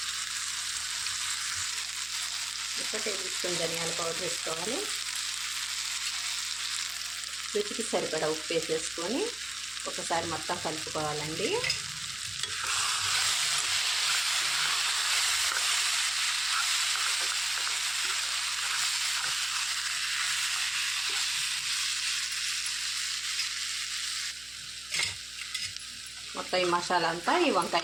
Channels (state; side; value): noise; right; hum, 25 dB below the sound